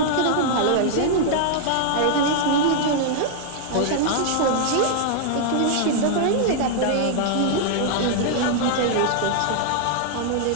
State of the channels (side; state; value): both; different; correlation 0.00